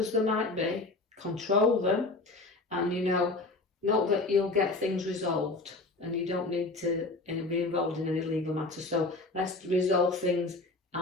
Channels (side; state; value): right; quieter; 3.2 dB